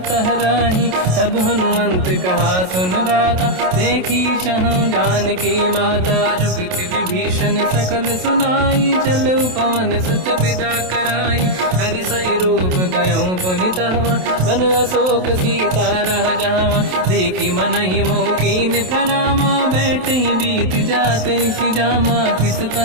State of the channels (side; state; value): left; late; 27 ms